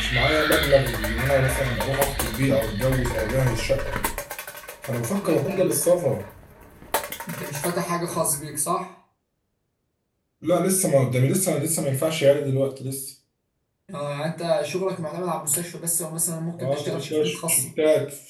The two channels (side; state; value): both; identical; correlation 1.00